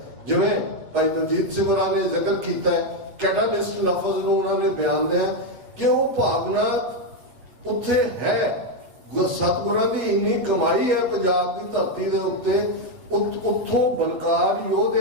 ਜਿਵੇਂ ਭਾਈ ਦਲਜੀਤ ਸਿੰਘ ਹੋਰਾਂ ਨੇ ਜ਼ਿਕਰ ਕੀਤਾ ਹੈ, ਕੈਟਾਲਿਸਟ ਲਫ਼ਜ਼ ਨੂੰ ਉਹਨਾਂ ਨੇ ਬਿਆਨ ਦਿਆ ਕਿ ਉਹ ਭਾਵਨਾ ਉੱਥੇ ਹੈ। ਸਤਿਗੁਰਾਂ ਦੀ ਇੰਨੀ ਕਮਾਈ ਹੈ ਪੰਜਾਬ ਦੀ ਧਰਤੀ ਦੇ ਉੱਤੇ, ਉੱਥੋਂ ਬਲਕਾਰ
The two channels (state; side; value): late; left; 8.2 ms